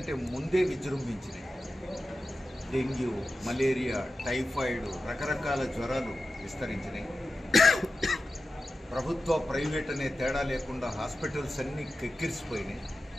ముందే విజృంభించినాయి. డెంగ్యూ, మలేరియా, టైఫాయిడ్, రకరకాల జ్వరాలు విస్తరించినాయి. ప్రభుత్వ, ప్రైవేట్ అనే తేడా లేకుండా హాస్పిటల్స్ అన్నీ కెక్కిరిసిపోయినాయి.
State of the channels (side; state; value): both; normal; correlation 0.92